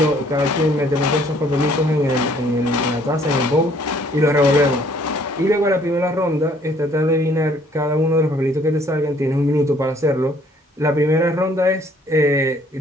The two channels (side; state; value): both; normal; correlation 0.61